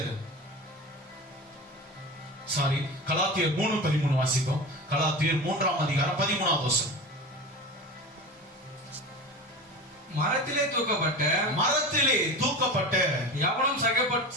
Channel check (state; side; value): normal; both; correlation 0.30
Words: கலாத்தியர் 3:13 வாசிப்போம். கலாத்தியர் 3ஆம் அதிகாரம் 13வது வசனம். மரத்திலே தூக்கப்பட்ட